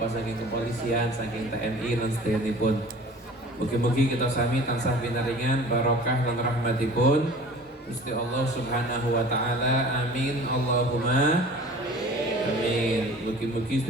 saking kepolisian, saking TNI lan sedayanipun. Mugi-mugi kita sami tansah pinaringan barokah lan rahmatipun Gusti Allah Subhanahu wa taala. Amin Allahumma amin. Mugi-mugi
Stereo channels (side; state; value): both; normal; correlation 0.44